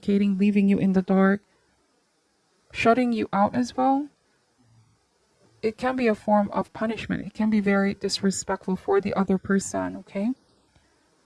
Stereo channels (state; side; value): identical; both; correlation 1.00